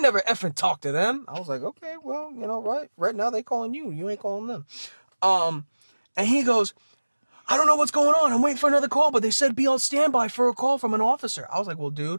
effing talked to them. I was like, okay, well, you know, right now they calling you. You ain't calling them. And he goes, I don't know what's going on. I'm waiting for another call, but they said be on standby for a call from an officer. I was like, well,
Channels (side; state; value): both; inverted; correlation -1.00